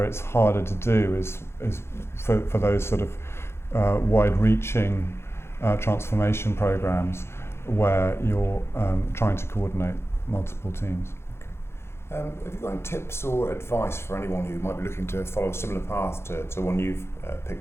it's harder to do is for those sort of wide-reaching transformation programs where you're trying to coordinate multiple teams. Have you got any tips or advice for anyone who might be looking to follow a similar path to one you've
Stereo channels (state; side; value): late; right; 0.12 ms